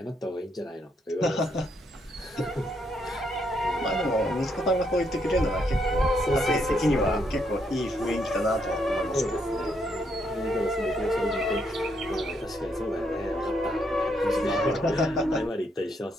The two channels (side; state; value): both; normal; correlation 0.75